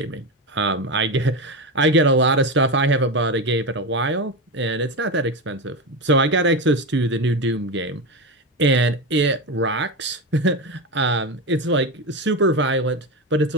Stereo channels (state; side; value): normal; both; correlation 0.17